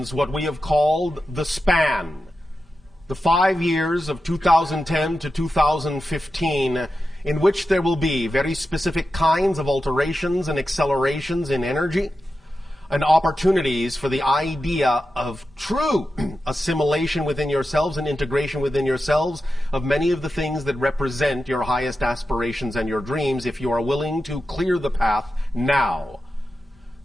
what we have called the span. The 5 years of 2010 to 2015, in which there will be very specific kinds of alterations and accelerations in energy, and opportunities for the idea of true assimilation within yourselves and integration within yourselves of many of the things that represent your highest aspirations and your dreams, if you are willing to clear the path now.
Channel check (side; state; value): both; normal; correlation 0.91